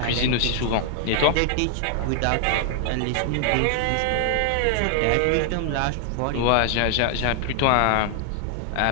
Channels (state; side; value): different; both; correlation 0.00